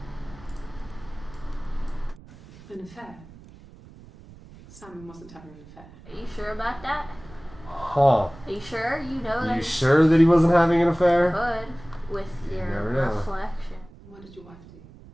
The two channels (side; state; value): right; noise; rumble, 20 dB below the sound